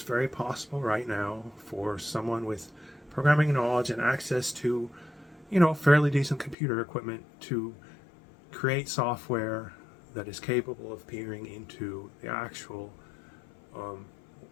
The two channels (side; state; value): right; drops out; at 6.6 s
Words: very possible right now for someone with programming knowledge and access to, fairly decent computer equipment to create software that is capable of peering into the actual